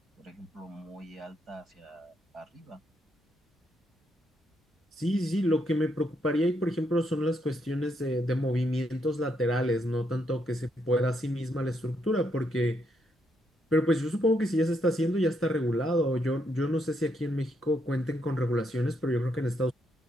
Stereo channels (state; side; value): normal; both; correlation 0.77